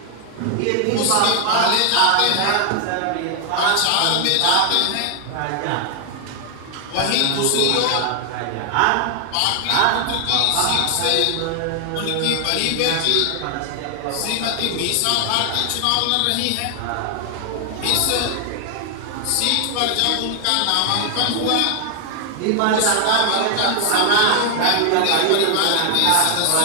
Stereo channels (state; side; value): different; both; correlation 0.00